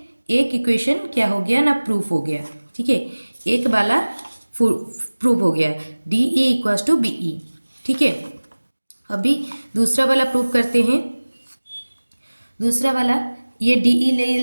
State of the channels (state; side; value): inverted; both; correlation -1.00